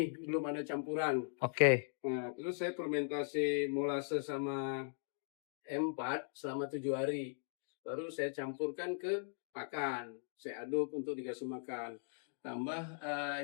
belum ada campuran. Oke. Nah, terus saya fermentasi molase sama M4 selama 7 hari. Baru saya campurkan ke pakan. Saya aduk untuk dikasih makan. Tambah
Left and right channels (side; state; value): right; silent; digital silence